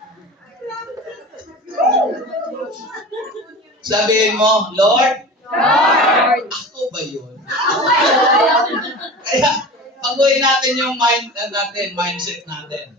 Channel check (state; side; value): normal; both; correlation 0.34